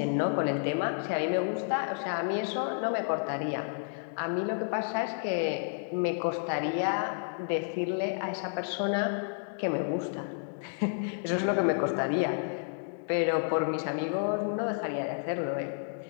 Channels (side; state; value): right; silent; digital silence